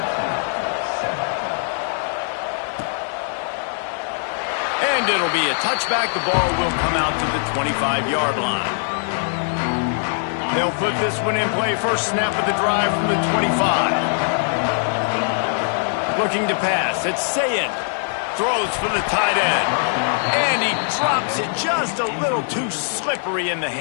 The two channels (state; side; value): silent; right; digital silence